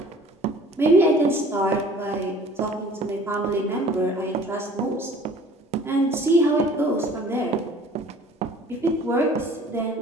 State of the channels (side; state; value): both; normal; correlation 0.49